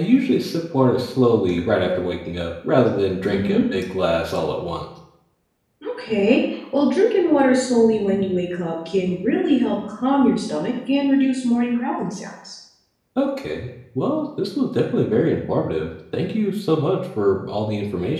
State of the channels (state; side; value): identical; both; correlation 1.00